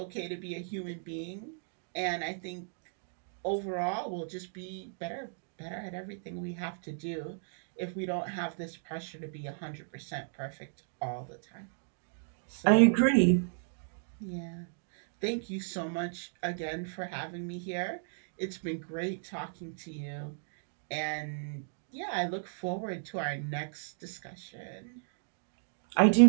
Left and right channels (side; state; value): left; silent; digital silence